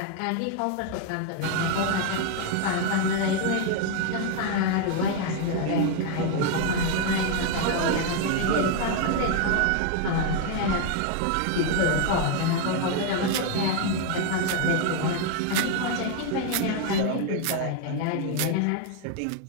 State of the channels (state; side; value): different; both; correlation 0.01